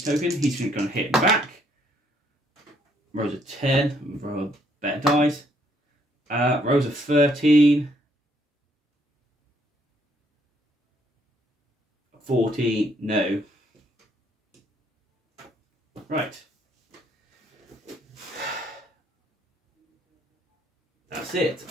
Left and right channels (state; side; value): normal; both; correlation 0.68